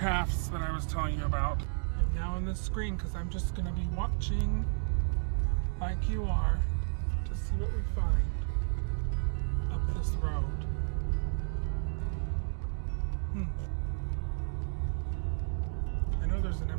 that I was telling you about. I'm now on this screen because I'm just going to be watching like you are to see what we find up this road. I know there's an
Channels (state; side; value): silent; left; digital silence